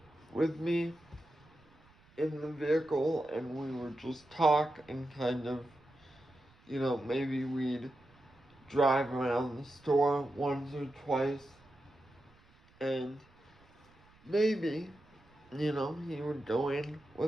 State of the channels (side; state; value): right; noise; rumble, 29 dB below the sound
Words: with me in the vehicle and we would just talk and kind of, maybe we'd drive around the store once or twice, and maybe, he would go in